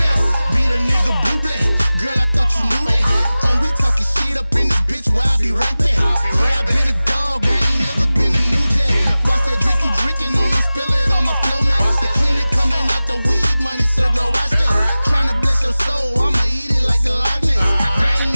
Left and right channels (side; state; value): both; inverted; correlation -0.97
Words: Be the nigga blue black. Girl, I thought you knew that. Oh, we talking shit up in this bitch where I be right there. Yeah, I been a dog, I ain't never been a new jack. Watch that drink you drinking on them, spill it on my flow, man. The clean it coming out the weed money, so girl, watch that. Tryna bless your soul, I'ma eat it like the Loch Ness. I ain't